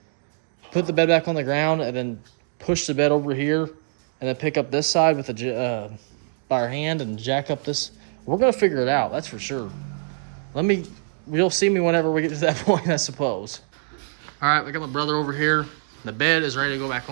put the bed back on the ground, and then push the bed over here, and then pick up this side with by our hand and jack up this. We're gonna figure it out, that's for sure. You'll see me whenever we get to that point, I suppose. All right, I got my brother over here. The bed is ready to go back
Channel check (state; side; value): silent; left; digital silence